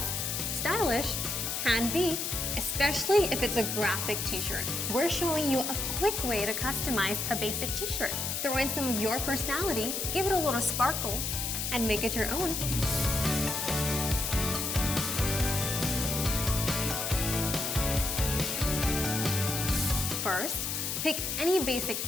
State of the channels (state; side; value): noise; left; hiss, 2 dB below the sound